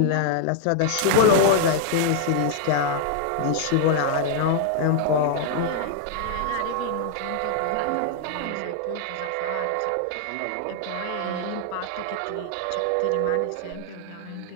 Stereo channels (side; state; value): both; different; correlation 0.00